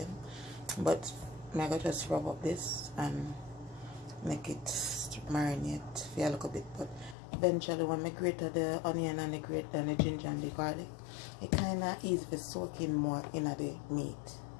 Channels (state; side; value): drops out; right; at 7.2 s